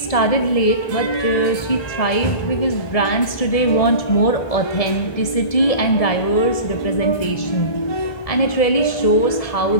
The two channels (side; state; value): right; late; 1.7 ms